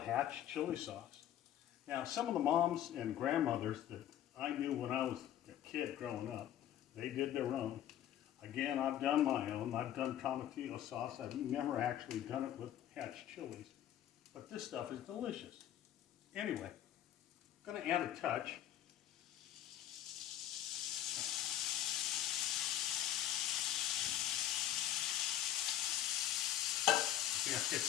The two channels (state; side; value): quieter; right; 11.7 dB